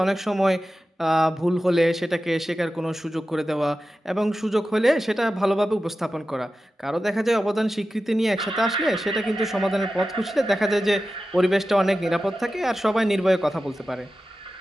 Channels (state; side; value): normal; both; correlation 0.93